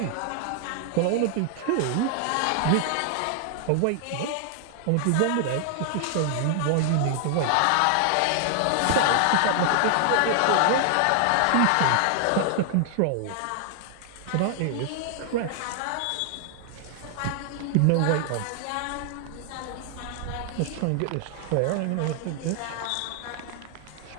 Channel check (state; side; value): different; both; correlation 0.00